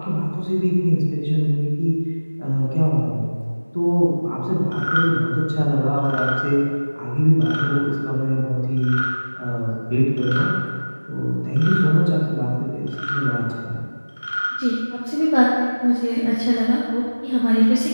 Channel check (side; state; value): both; inverted; correlation -1.00